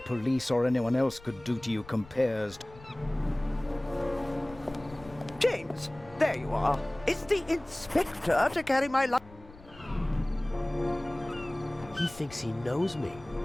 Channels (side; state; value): left; noise; rumble, 21 dB below the sound